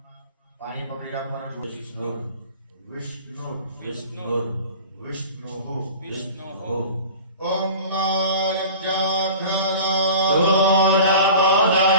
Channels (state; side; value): inverted; both; correlation -0.39